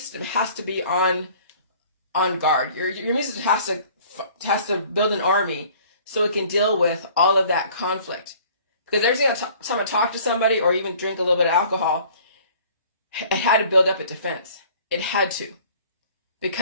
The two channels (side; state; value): both; inverted; correlation -0.52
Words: has to be on guard. Your immune system has to build an army so it can deal with all of that conflict. Because every single time I talk to somebody or even drink a little bit of alcohol, it had to build up a defense. It had to.